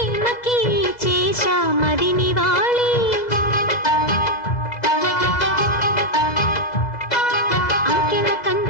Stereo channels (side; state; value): right; late; 2.0 ms